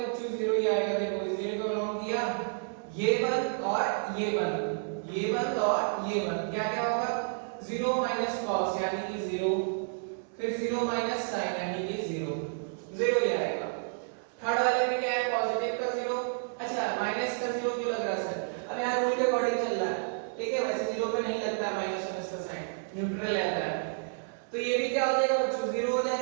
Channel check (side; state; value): left; silent; 57 dB below the other